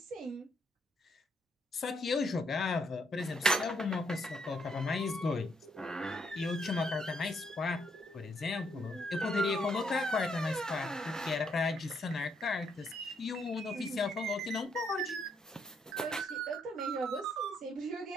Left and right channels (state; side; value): normal; both; correlation 0.74